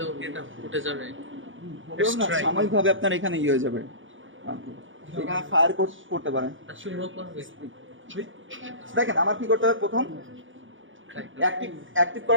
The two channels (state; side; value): late; left; 0.57 ms